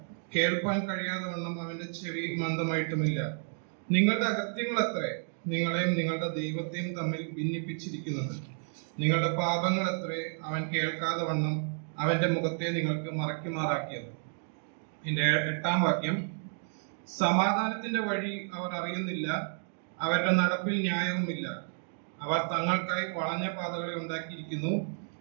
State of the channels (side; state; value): left; silent; 57 dB below the other